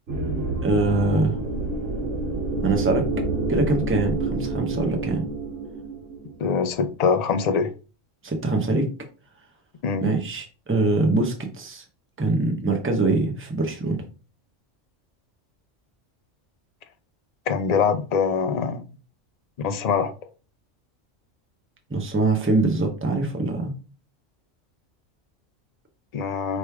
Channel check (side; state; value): both; normal; correlation 0.30